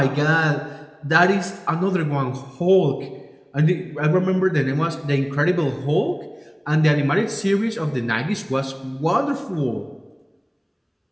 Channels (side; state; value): both; identical; correlation 1.00